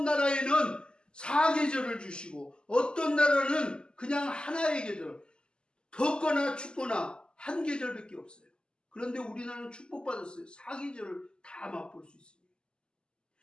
나라에는 4계절을 주시고 어떤 나라는 그냥 하나의 계절, 덥거나 춥거나 한 계절밖에 없어요. 그런데 우리나라는 축복받았어요. 4계절을 다 맛볼 수 있습니다.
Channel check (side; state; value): right; late; 0.048 ms